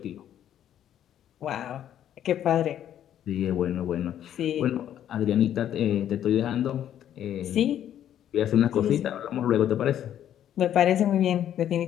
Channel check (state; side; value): quieter; right; 10.7 dB